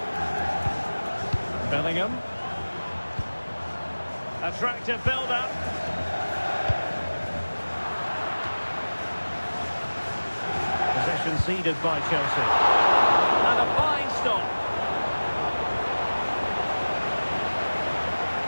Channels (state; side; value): inverted; both; correlation -1.00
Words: Bellingham. Attractive build-up. Possession ceded by Chelsea. And a fine stop.